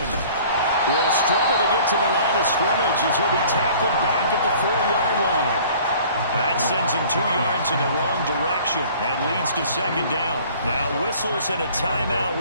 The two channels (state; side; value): inverted; both; correlation -0.50